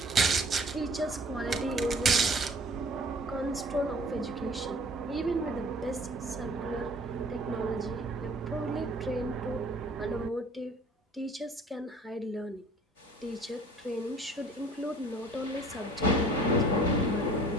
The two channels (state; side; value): normal; both; correlation 0.51